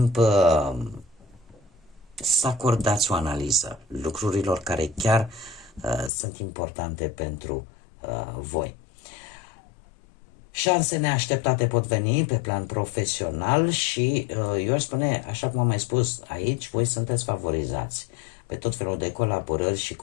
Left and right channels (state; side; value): drops out; right; at 6.1 s